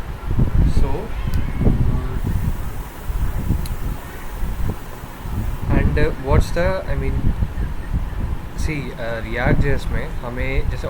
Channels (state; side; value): identical; both; correlation 1.00